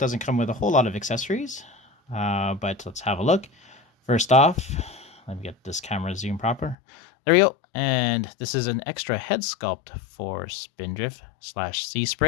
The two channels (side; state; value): right; drops out; at 6.8 s